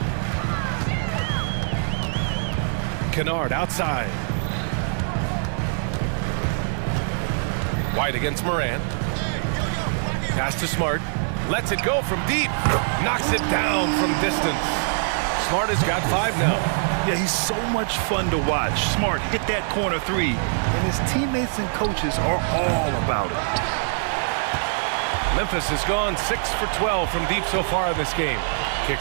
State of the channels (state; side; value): silent; left; digital silence